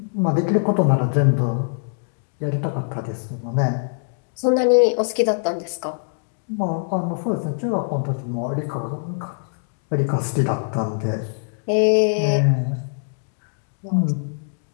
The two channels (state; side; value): silent; right; digital silence